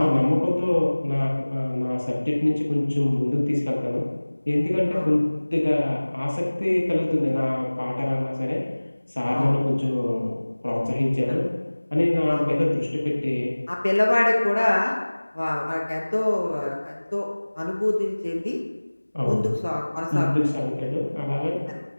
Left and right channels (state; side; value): inverted; both; correlation -1.00